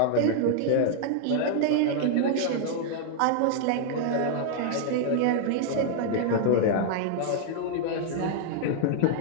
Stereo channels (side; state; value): both; different; correlation -0.01